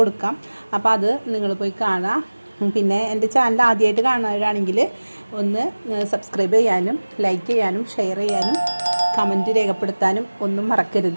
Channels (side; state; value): both; inverted; correlation -1.00